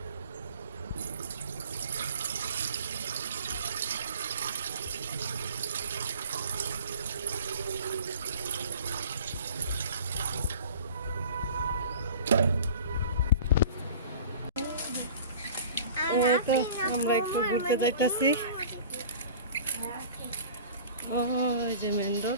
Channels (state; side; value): inverted; both; correlation -0.43